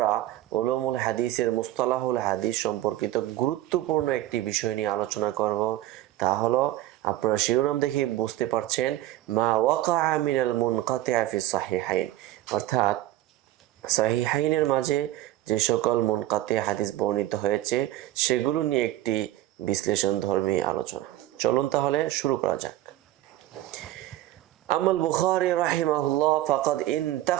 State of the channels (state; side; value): quieter; left; 15.0 dB